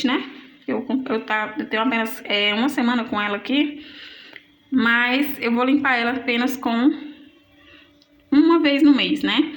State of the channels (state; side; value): identical; both; correlation 1.00